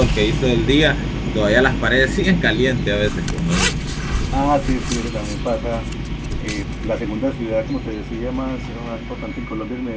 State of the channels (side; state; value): both; identical; correlation 1.00